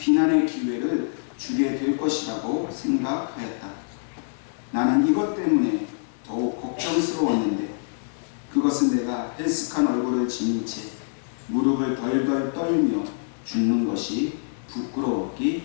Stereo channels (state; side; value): silent; right; 62 dB below the other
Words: 기회를 주게 될 것이라고 생각하였다. 나는 이것 때문에 더욱 걱정스러웠는데 그것은 내가 헬스칸 얼굴을 지닌 채 무릎을 덜덜 떨며 죽는 것이